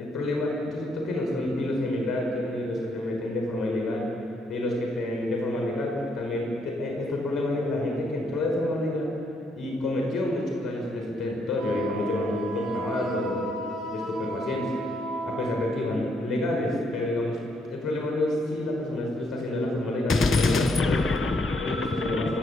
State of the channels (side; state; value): both; normal; correlation 0.73